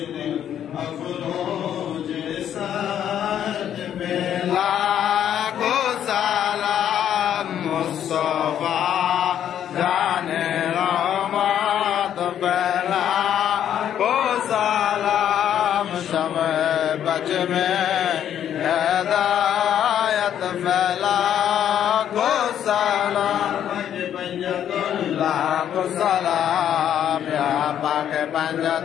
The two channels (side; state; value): right; quieter; 10.0 dB